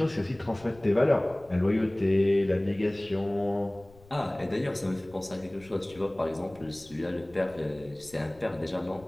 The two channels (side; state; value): left; noise; rumble, 25 dB below the sound